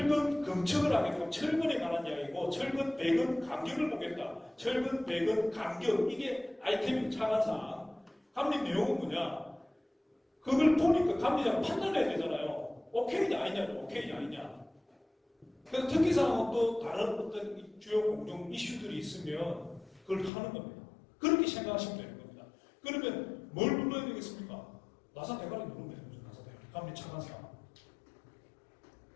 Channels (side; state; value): right; drops out; at 20.3 s